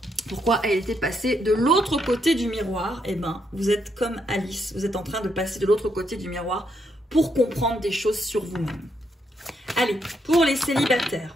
pourquoi elle était passée de l'autre côté du miroir, eh bien, vous êtes comme Alice, vous êtes en train de passer de l'autre côté du miroir pour comprendre des choses sur vous-même. Allez, pour les célibataires,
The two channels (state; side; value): normal; both; correlation 0.77